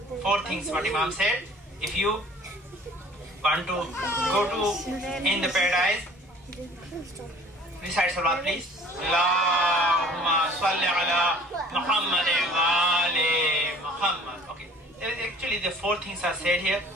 Four things what Imam said. If you want to go to in the paradise, recite salawat please. Allahumma salli ala Muhammad wa ali Muhammad. Okay. Actually the four things are said here.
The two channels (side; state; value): both; normal; correlation 0.49